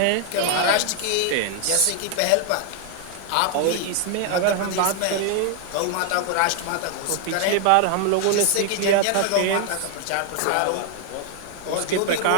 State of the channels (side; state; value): both; different; correlation 0.00